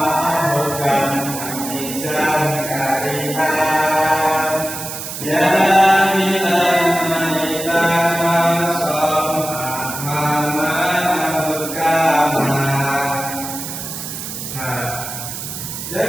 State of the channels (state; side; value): noise; right; hiss, 7 dB below the sound